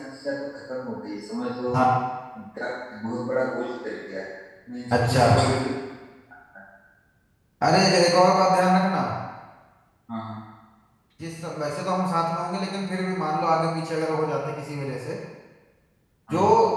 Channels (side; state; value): both; identical; correlation 1.00